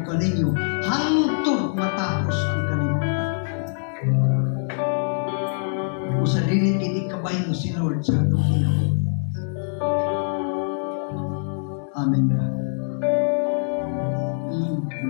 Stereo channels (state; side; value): silent; right; digital silence